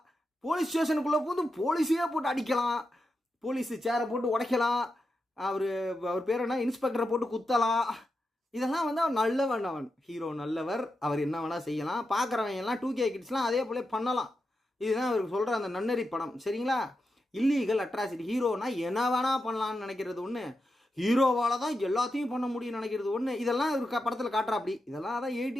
போலீஸ் ஸ்டேஷனுக்குள்ளே போது போலீஸையே போட்டு அடிக்கலாம், போலீஸு சேரை போட்டு உடைக்கலாம், அவர் பேர் என்ன இன்ஸ்பெக்டரை போட்டு குத்தலாம், இதெல்லாம் வந்து அவன் நல்லவன், அவன் ஹீரோ நல்லவர், அவர் என்ன வேணால் செய்யலாம், பார்க்குறவங்க எல்லாம் 2K கிட்ஸ்லாம் அதே போல பண்ணலாம். இதுதான் அவருக்கு சொல்கிற அந்த நன்னறி படம், சரிங்களா? Illegal atrocity. ஹீரோனா என்ன வேணால் பண்ணலான்னு நினைக்கிறது ஒன்று, ஹீரோவால் தான் எல்லாத்தையும் பண்ண முடியும்னு நினைக்கிறது ஒன்று. இதெல்லாம் ஒரு படத்தில் காட்டுறா அப்படி. இதெல்லாம் அதான்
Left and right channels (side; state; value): both; normal; correlation 0.88